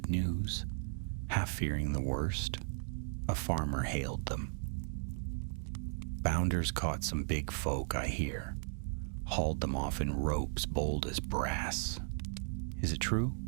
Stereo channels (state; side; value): silent; left; digital silence